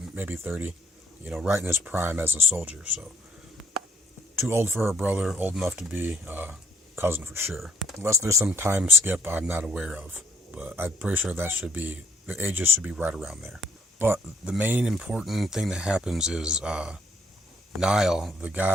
maybe 30, right in his prime as a soldier. So too old for her brother, old enough to be cousin for sure. Unless there's some time skip I'm not aware of, but I'm pretty sure the ages should be right around there. But the main important thing that happens is Niall, the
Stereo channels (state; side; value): normal; both; correlation 0.66